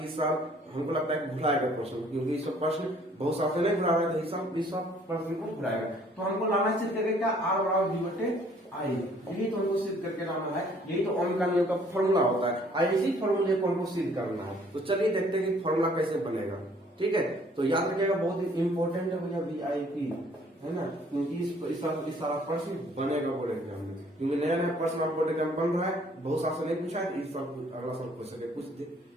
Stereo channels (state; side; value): normal; both; correlation 0.59